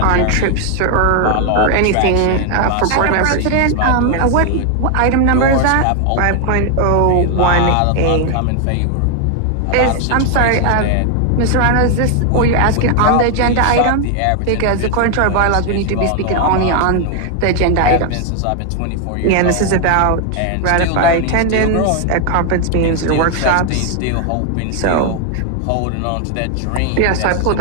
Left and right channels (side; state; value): both; different; correlation 0.00